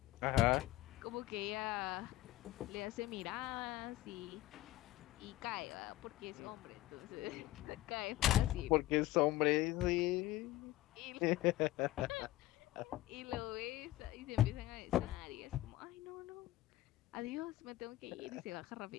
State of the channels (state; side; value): quieter; right; 16.0 dB